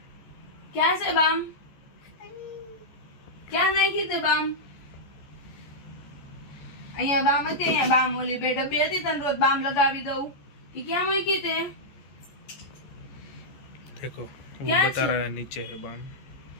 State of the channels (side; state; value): right; late; 14 ms